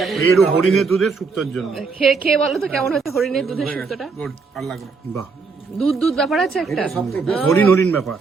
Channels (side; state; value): left; quieter; 4.8 dB